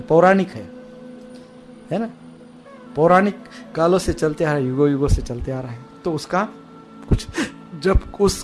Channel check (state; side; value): identical; both; correlation 1.00